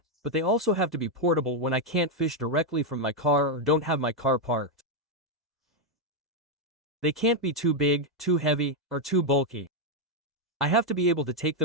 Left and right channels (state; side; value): normal; both; correlation 0.02